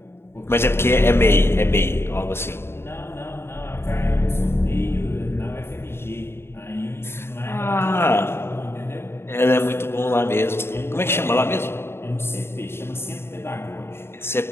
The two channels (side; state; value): right; late; 0.12 ms